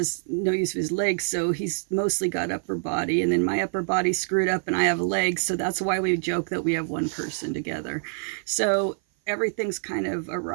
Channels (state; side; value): silent; left; 56 dB below the other